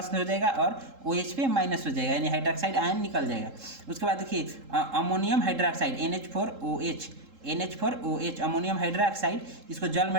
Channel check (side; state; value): left; late; 3.7 ms